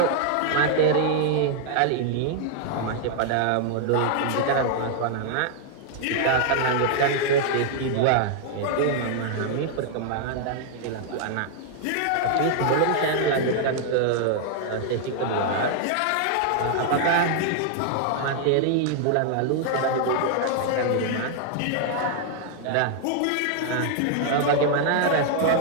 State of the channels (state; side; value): different; both; correlation 0.00